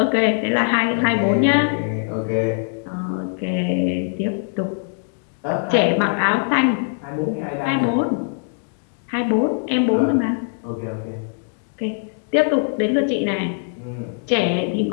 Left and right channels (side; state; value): right; silent; digital silence